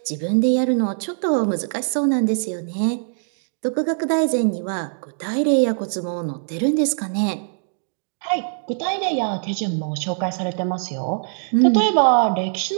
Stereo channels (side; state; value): left; silent; digital silence